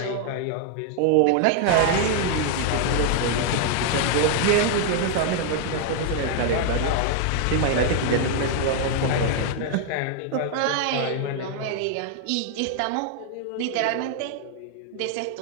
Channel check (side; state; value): both; different; correlation 0.00